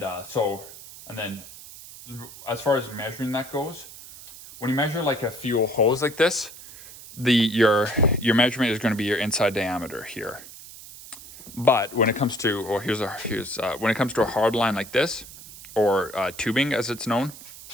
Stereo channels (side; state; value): right; noise; hiss, 16 dB below the sound